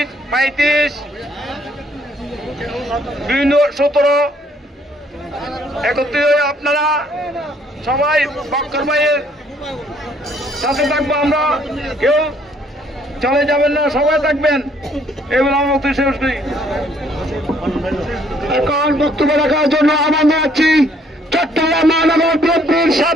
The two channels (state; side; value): normal; both; correlation 0.64